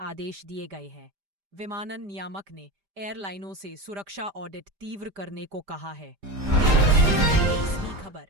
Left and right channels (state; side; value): late; left; 5.0 ms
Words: दिए गए हैं। विमानन नियामक ने एयरलाइनों से सुरक्षा ऑडिट तीव्र करने को कहा है। 23वीं खबर,